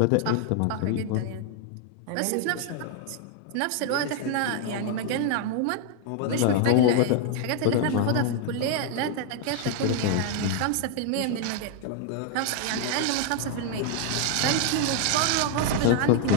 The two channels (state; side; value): different; both; correlation 0.00